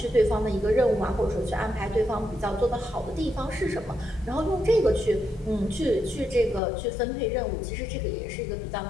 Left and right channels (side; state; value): right; drops out; at 6.6 s